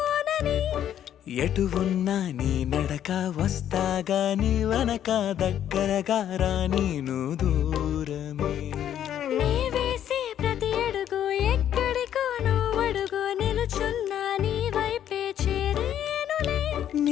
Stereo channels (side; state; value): right; quieter; 10.4 dB